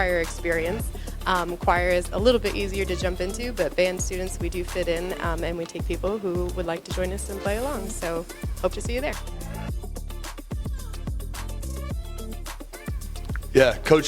experience. Choir is a little bit easier to jump into, but band students, we do fit in, and we take people who would like to join us and play along. So hope to see you there. Yeah,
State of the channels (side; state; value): both; identical; correlation 1.00